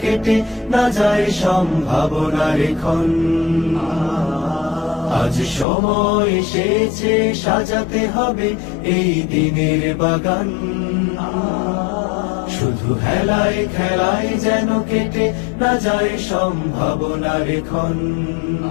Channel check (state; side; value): drops out; right; at 5.7 s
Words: কেটে না যায় সম্ভাবনার ক্ষণ। আজ সময় এসেছে সাজাতে হবে এই দিনের বাগান, শুধু হেলায় খেলায় যেন কেটে না যায় সম্ভাবনার ক্ষণ।